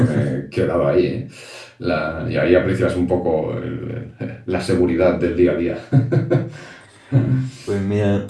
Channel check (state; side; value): identical; both; correlation 1.00